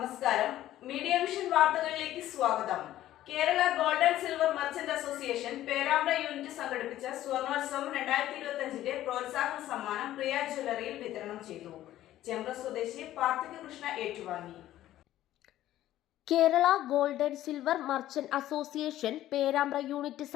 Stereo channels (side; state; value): right; quieter; 13.6 dB